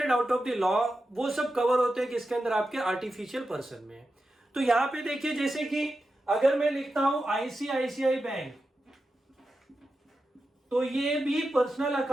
out of the law, वो सब कवर होते हैं किसके अंदर, आपके आर्टिफिशियल पर्सन में। तो यहां पे देखिए, जैसे कि अगर मैं लिखता हूं आईसीआईसीआई बैंक, तो ये भी पर्सनल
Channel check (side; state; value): both; normal; correlation 0.90